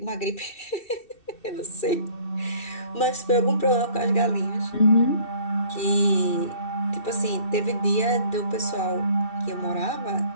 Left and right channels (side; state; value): right; late; 2.7 ms